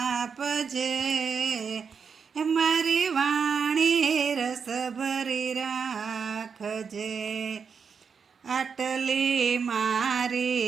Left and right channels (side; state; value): left; quieter; 6.1 dB